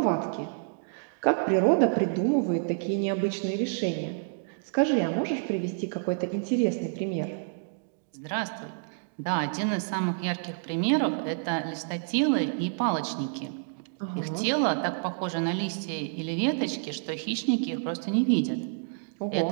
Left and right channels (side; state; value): left; silent; digital silence